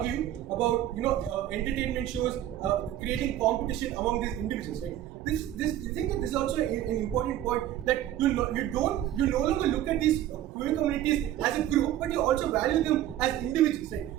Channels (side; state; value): left; quieter; 12.5 dB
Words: about entertainment shows creating competition among these individuals, right? I think that this is also an important point, that you no longer look at these queer communities as a group, but you also value them as individuals, right?